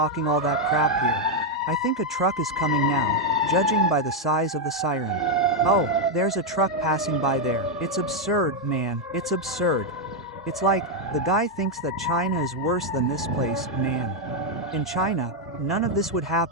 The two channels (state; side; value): normal; both; correlation 0.02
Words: all that crap here. I think a truck is coming now, judging by the size of the siren. Oh, there's a truck passing by there. It's absurd, man. It's absurd. It's like, the guy thinks that China is worse than this place, man. In China, none of this would